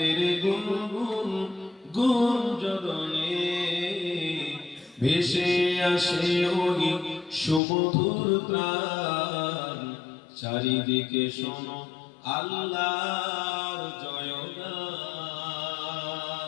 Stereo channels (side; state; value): right; drops out; at 7.6 s